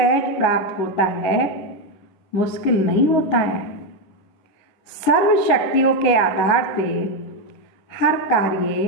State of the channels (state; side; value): late; right; 9.3 ms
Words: प्राप्त होता है, मुश्किल नहीं होता है। सर्व शक्तियों के आधार से हर कार्य